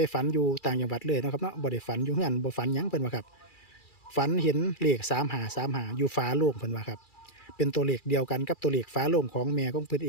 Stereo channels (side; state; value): right; late; 2.3 ms